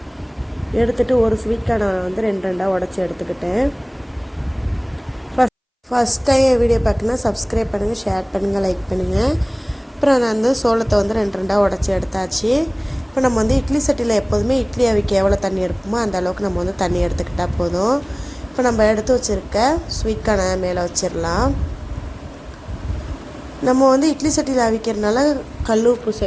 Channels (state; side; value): identical; both; correlation 1.00